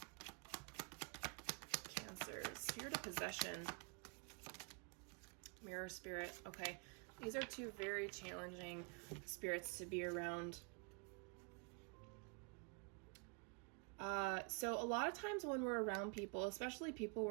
Cancer? Spirit of Possession. Mirror Spirit. Okay. These are two very challenging spirits to be around. So a lot of times when we're around people, especially people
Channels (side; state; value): left; quieter; 34.8 dB